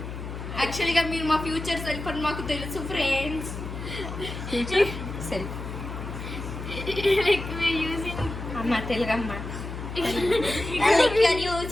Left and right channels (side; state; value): left; noise; hum, 8 dB below the sound